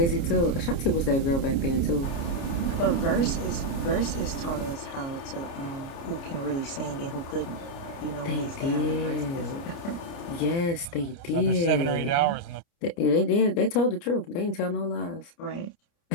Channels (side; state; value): right; late; 29 ms